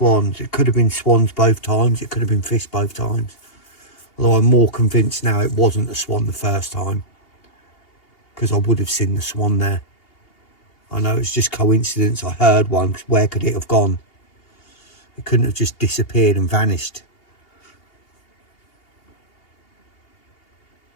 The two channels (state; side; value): late; right; 2.8 ms